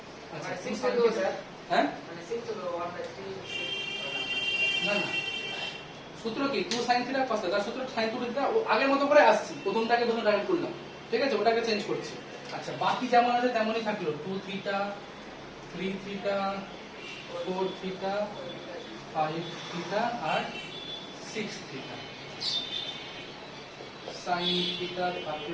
আচ্ছা মানে 2 6 sin to theta স্যার হ্যাঁ মানে 6 to 1/3 না না সূত্র কি 2 sin থিটা cos থিটা সূত্র sin 2 থিটা ও আগের মতো করে আসছি প্রথমটাকে ডাইরেক্ট করলাম ঠিক আছে ওটাকে চেঞ্জ করছি আচ্ছা বাকি যেমন আছে তেমনই থাকলো 2 থিটা 3 থিটা 4 থিটা 5 থিটা আর 6 থিটা sin থিটা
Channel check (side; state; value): both; identical; correlation 1.00